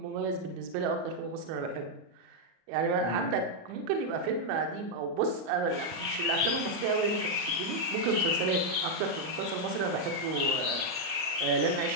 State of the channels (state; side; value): late; left; 38 ms